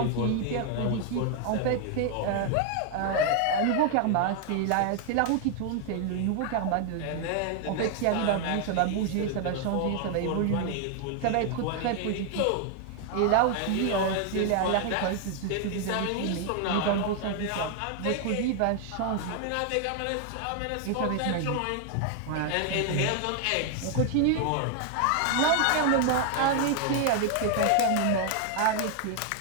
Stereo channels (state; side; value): different; both; correlation 0.00